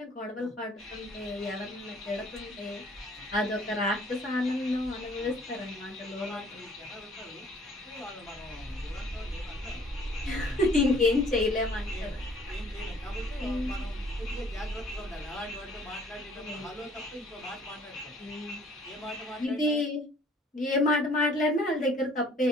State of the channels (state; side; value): normal; both; correlation 0.56